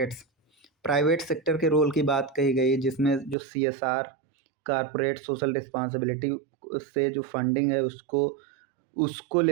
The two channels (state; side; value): drops out; left; at 3.4 s